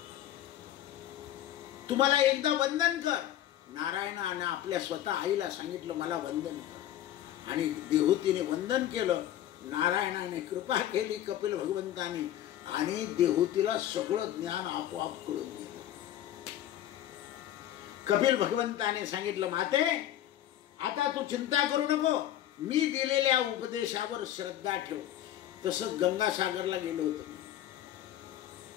तुम्हाला एकदा वंदन कर. नारायणाने आपल्या स्वतः आईला सांगितलं, मला वंदन कर. आणि देहूतीने वंदन केलं. नारायणाने कृपा केली कपिल भगवंताने, आणि देहूतीला सगळं ज्ञान आपोआप कळून गेलं. कपिल भगवंताने सांगितलं, माते, आता तू चिंता करू नको, मी दिलेल्या उपदेशावर श्रद्धा ठेव. तसंच गंगासागरला गेलो होतो.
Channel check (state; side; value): quieter; right; 12.3 dB